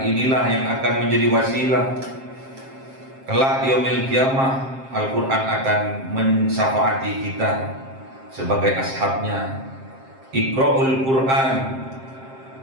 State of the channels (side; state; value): left; late; 7.5 ms